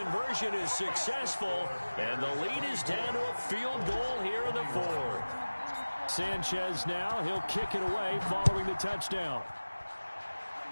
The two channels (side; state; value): both; inverted; correlation -1.00